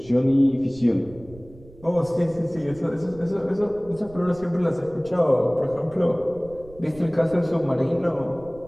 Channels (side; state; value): right; noise; rumble, 21 dB below the sound